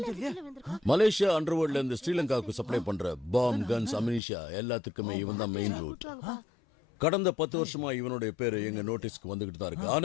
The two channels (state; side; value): drops out; right; at 4.2 s